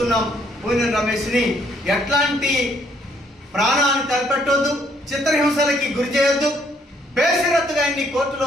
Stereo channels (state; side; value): normal; both; correlation 0.67